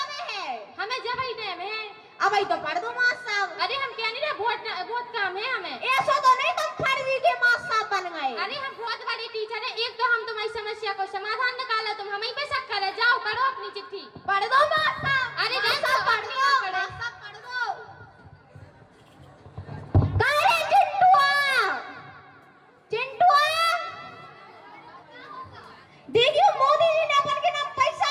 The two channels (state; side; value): identical; both; correlation 1.00